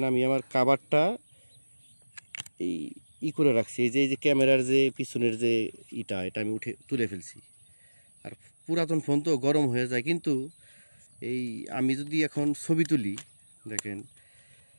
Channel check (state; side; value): inverted; both; correlation -1.00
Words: আমি আমার কাভারটা এই করে রাখছি, এই যে ক্যামেরার যে পিছনের যে এটা আমি তুলে ফেলছি। আর পুরাতন ফোন তো গরম হয়ে যায়, কিন্তু এই আমি যদি এখন ছবি তুলি, দেখেন